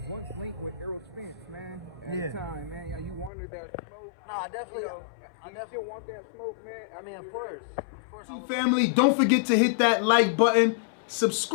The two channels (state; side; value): drops out; right; at 3.3 s